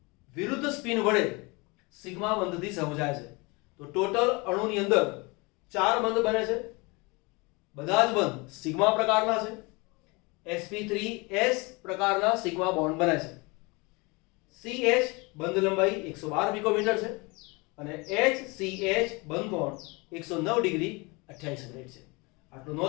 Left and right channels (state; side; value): quieter; right; 27.0 dB